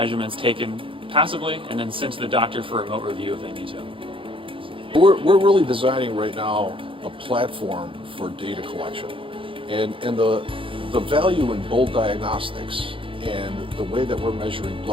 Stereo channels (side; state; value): left; late; 0.25 ms